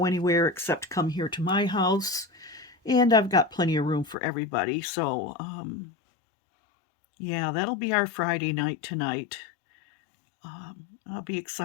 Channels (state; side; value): drops out; right; at 4.2 s